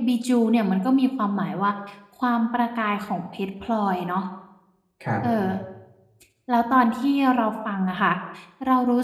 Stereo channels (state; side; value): identical; both; correlation 1.00